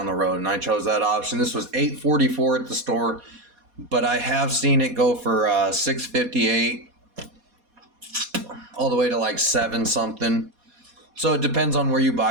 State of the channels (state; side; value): late; left; 4.2 ms